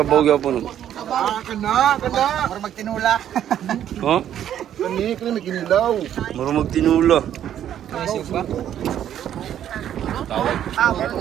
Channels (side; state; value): left; quieter; 10.5 dB